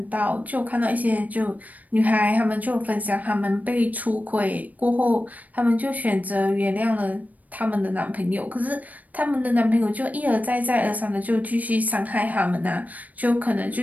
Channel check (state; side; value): late; left; 0.075 ms